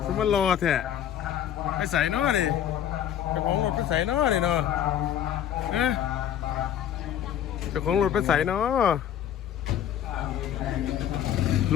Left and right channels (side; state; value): right; quieter; 10.2 dB